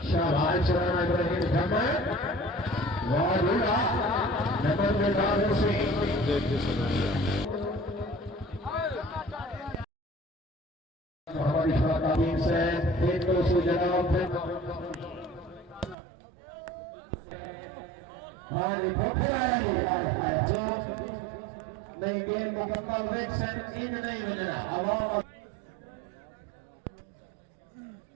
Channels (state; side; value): drops out; left; at 16.0 s